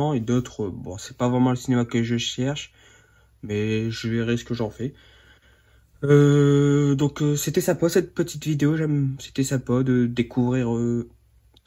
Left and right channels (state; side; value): identical; both; correlation 1.00